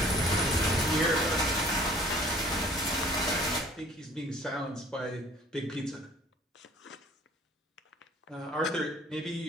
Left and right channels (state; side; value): normal; both; correlation 0.53